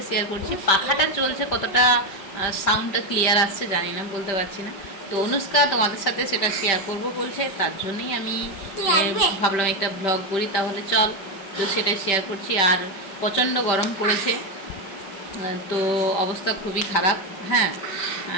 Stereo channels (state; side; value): late; right; 5.1 ms